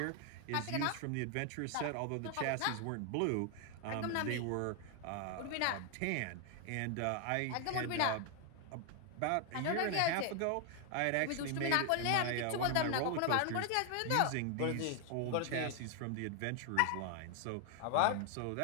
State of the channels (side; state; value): both; different; correlation 0.00